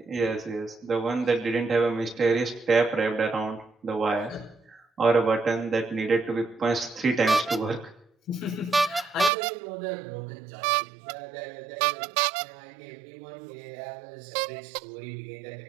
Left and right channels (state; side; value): drops out; left; at 9.3 s